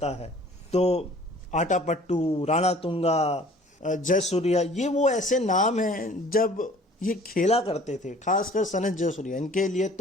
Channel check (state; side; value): normal; both; correlation 0.51